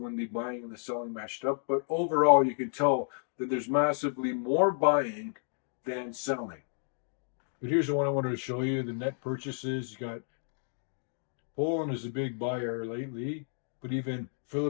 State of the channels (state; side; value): silent; right; digital silence